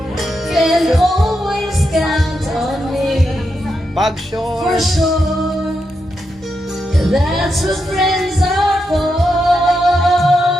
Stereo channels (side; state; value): both; normal; correlation 0.84